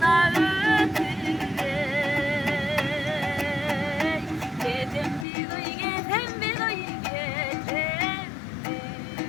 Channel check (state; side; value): drops out; right; at 5.2 s